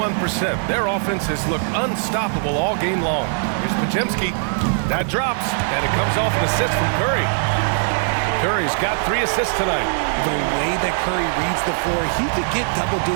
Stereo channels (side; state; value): left; silent; digital silence